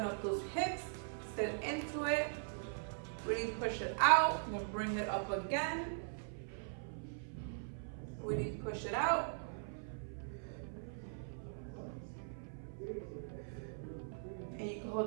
up those hips, sit into it, really push it out, then bring it up again. Really push it out. And you can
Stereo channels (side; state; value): left; silent; 50 dB below the other